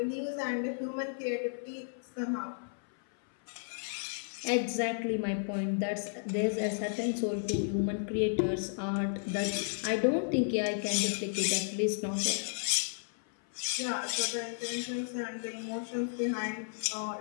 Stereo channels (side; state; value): right; silent; 56 dB below the other